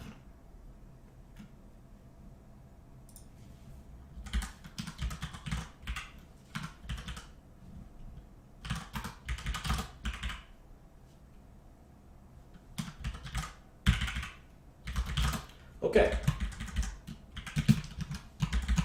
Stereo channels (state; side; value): identical; both; correlation 1.00